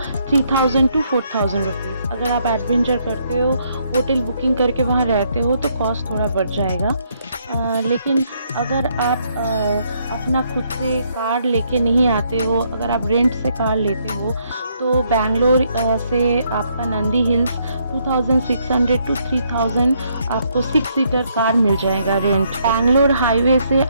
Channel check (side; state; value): both; inverted; correlation -0.72